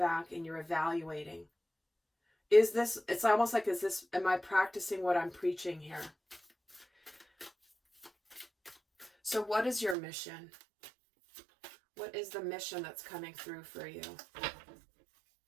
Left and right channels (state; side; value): drops out; left; at 10.0 s